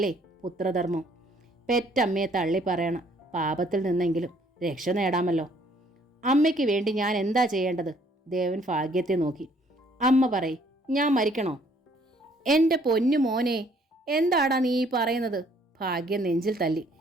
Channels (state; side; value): normal; both; correlation 0.62